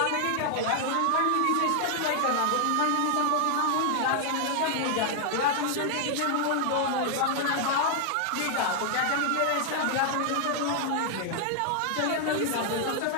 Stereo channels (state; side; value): different; both; correlation 0.00